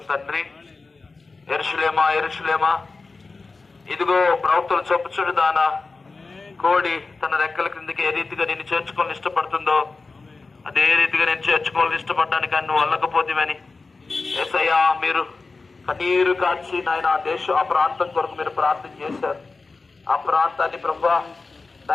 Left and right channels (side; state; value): right; quieter; 3.9 dB